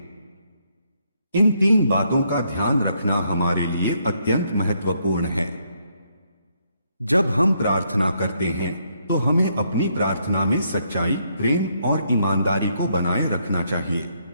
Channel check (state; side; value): inverted; both; correlation -0.74